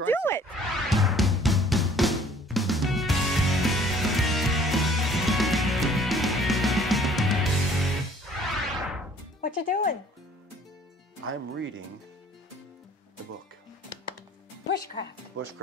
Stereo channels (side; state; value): both; normal; correlation 0.55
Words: it. What you doing? I'm reading the book. Bushcraft.